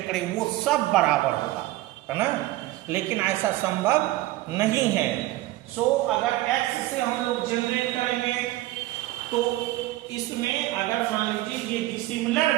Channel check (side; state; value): left; quieter; 17.1 dB